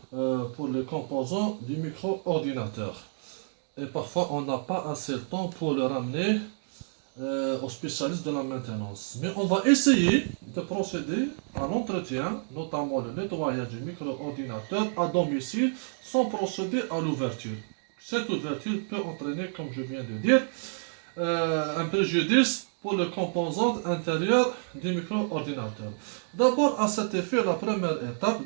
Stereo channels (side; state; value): left; silent; digital silence